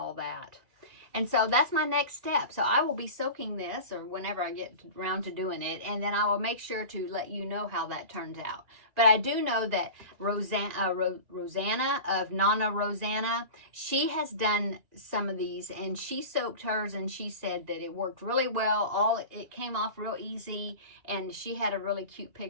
that. And so that's my next step. So I will be soaking this, or whenever I get around to doing it, and then I will make sure to let you know how that turns out. But I do know that Rosanna of Nana Rosanna, she has done some of these, and she soaked hers, and she said that it worked really well. It came off real easy, and she had a really cute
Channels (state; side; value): late; left; 2.4 ms